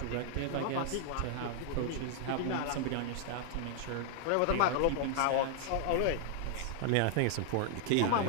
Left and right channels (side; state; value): both; different; correlation 0.00